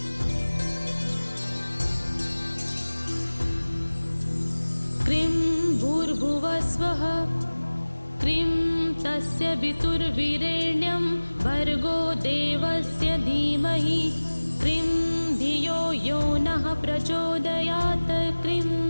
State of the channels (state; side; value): inverted; both; correlation -1.00